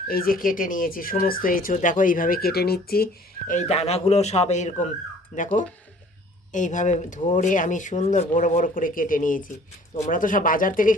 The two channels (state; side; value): normal; both; correlation 0.53